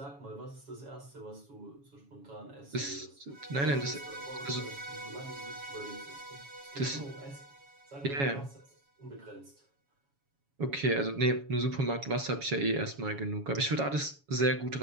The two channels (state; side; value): late; left; 7.2 ms